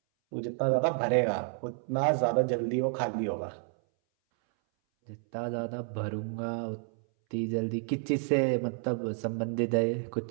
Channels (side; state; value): left; silent; 58 dB below the other